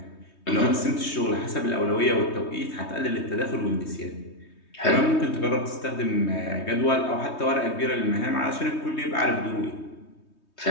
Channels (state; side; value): late; right; 3.2 ms